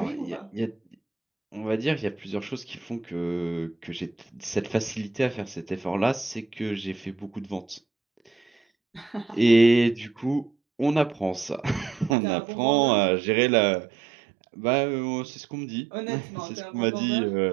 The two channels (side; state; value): left; drops out; at 12.2 s